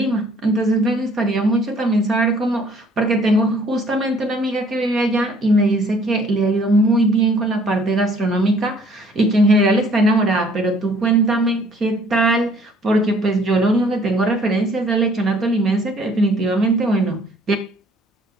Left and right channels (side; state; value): both; normal; correlation 0.58